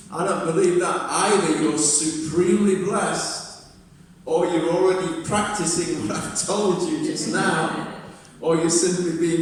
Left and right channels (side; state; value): both; identical; correlation 1.00